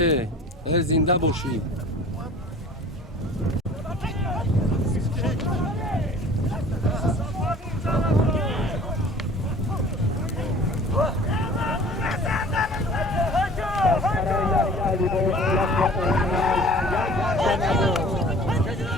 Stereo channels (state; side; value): normal; both; correlation 0.47